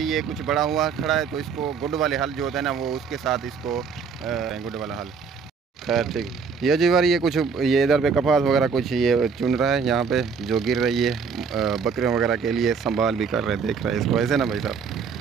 ये कुछ बड़ा हुआ खड़ा है। तो इसको गुड वाले हल जो होता है ना, वो उसके साथ इसको गुड वाला हल। खैर ठीक, ये जी बार ये कुछ ये इधर पे कपास वगैरह कुछ ये चुन रहा है यहाँ पे, जो गिर रही है बकरियों वगैरह के लिए संभाल भी कर रहे हैं, देख रहे हैं इसको ऐसे ना भाई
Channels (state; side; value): quieter; left; 5.8 dB